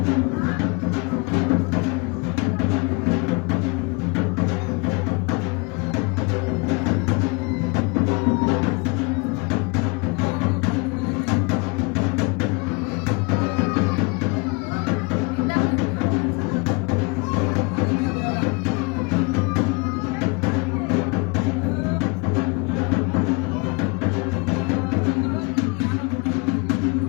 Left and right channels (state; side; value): quieter; right; 29.5 dB